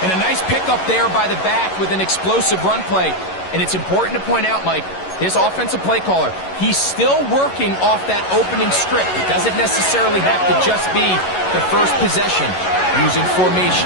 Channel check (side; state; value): right; late; 11 ms